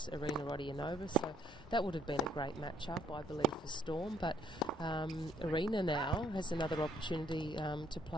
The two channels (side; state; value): both; normal; correlation 0.67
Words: Irina Rodionova, so that would have been a great matchup, I believe, for Storm. But Irina now has another opportunity to